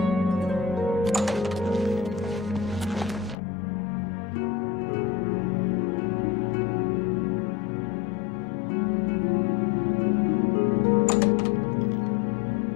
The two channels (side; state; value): right; drops out; at 3.4 s